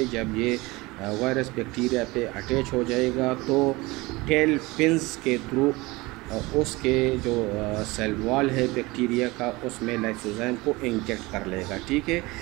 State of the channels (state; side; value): quieter; left; 22.3 dB